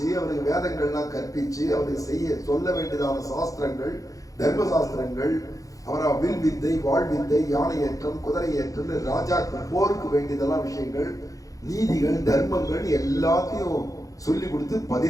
அவனுக்கு வேதங்கள்லாம் கற்பிச்சு அவனுக்கு சொல்ல வேண்டியதான சாஸ்திரங்கள், தர்ம சாஸ்திரங்கள், அவரா வில் வித்தை, வாழ் வித்தை, யானை ஏற்றம், குதிரை ஏற்றம், ராஜாக்கு போருக்கு வேண்டியதெல்லாம் விஷயங்கள், நீதிகள், தர்மங்கள் எல்லாத்தையும் சொல்லி கொடுத்து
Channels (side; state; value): right; late; 0.17 ms